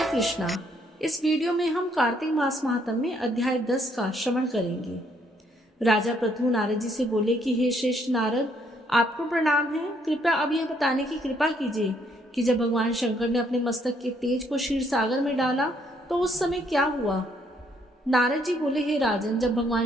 कृष्णा। इस वीडियो में हम कार्तिक मास महात्म्य में अध्याय 10 का श्रवण करेंगे। राजा पृथु नारद जी से बोले कि हे श्रेष्ठ नारद, आपको प्रणाम है। कृपया अब यह बताने की कृपा कीजिए कि जब भगवान शंकर ने अपने मस्तक के तेज को क्षीर सागर में डाला तो उस समय क्या हुआ। नारद जी बोले, हे राजन, जब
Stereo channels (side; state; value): both; normal; correlation 0.69